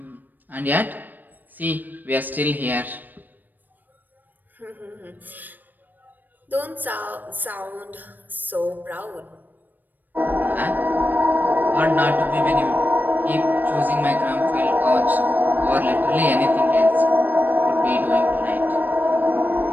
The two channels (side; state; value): left; late; 0.089 ms